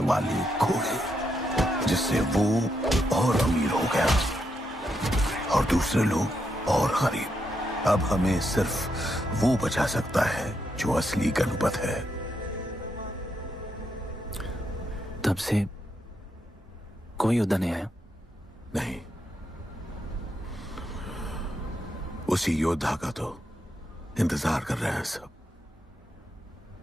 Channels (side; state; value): both; normal; correlation 0.81